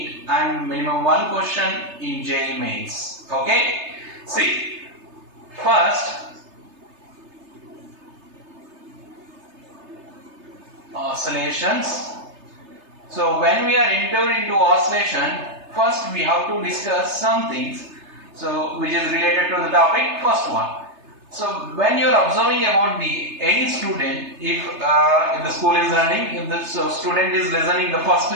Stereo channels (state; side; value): late; left; 3.3 ms